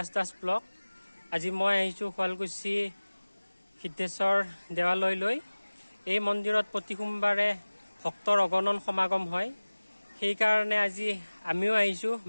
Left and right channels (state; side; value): inverted; both; correlation -1.00